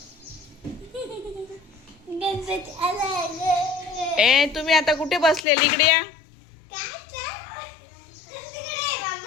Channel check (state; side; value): drops out; right; at 5.5 s